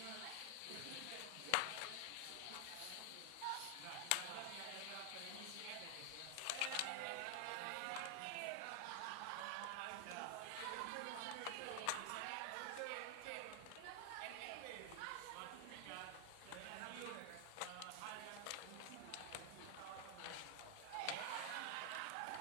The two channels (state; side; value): different; both; correlation 0.00